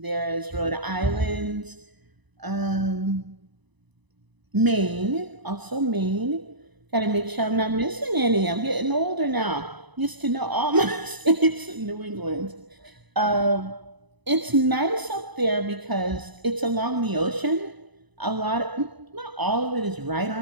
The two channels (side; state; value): left; late; 1.0 ms